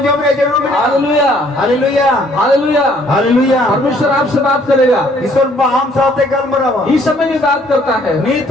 रे जरूर हालेलुया हालेलुया हालेलुया हालेलुया परमेश्वर आपसे बात करेगा। ईश्वर हम साथे गल मरावा इस समय भी बात करता है, नहीं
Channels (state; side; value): normal; both; correlation 0.62